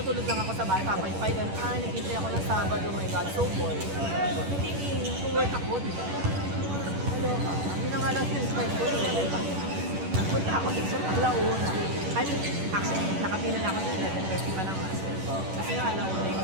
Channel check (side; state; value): left; late; 11 ms